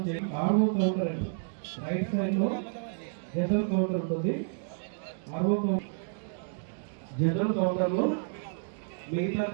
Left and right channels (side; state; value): left; silent; digital silence